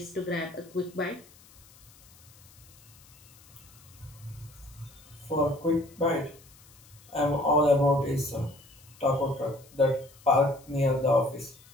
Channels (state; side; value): noise; left; hiss, 25 dB below the sound